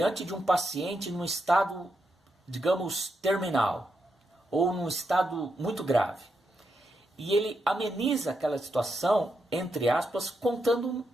de um paciente num estado, digamos, terminal, ou num estado muito grave, e ele ameniza aquela situação, entre aspas, contando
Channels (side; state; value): both; normal; correlation 0.83